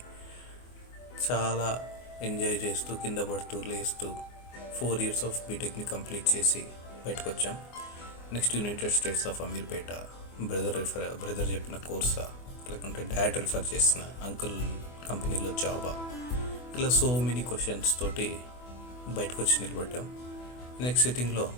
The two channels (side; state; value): right; late; 24 ms